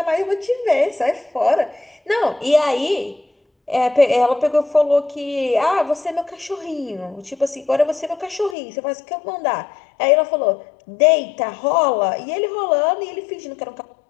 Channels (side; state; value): right; drops out; at 8.6 s